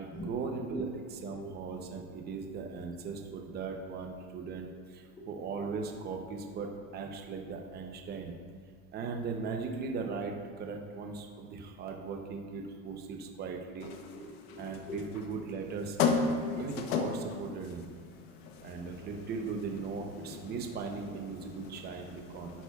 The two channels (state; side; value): normal; both; correlation 0.26